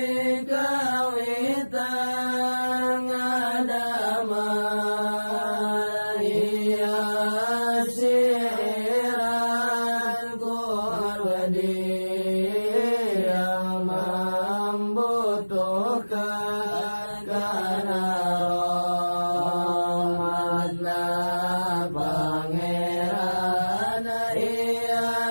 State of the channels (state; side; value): inverted; both; correlation -1.00